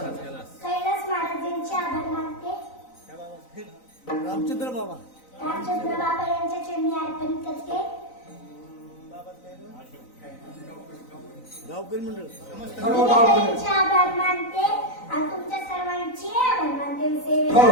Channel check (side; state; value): right; late; 3.9 ms